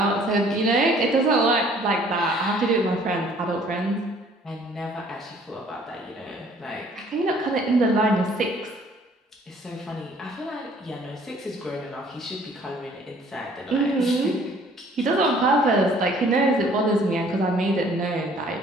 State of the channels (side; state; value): both; normal; correlation 0.57